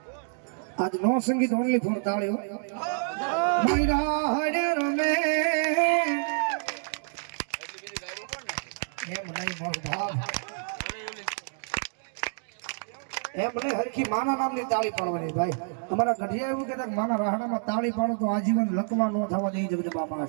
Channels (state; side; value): silent; left; digital silence